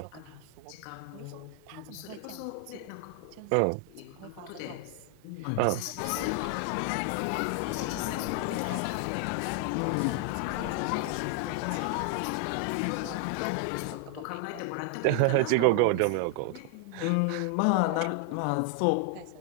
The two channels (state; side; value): different; both; correlation 0.00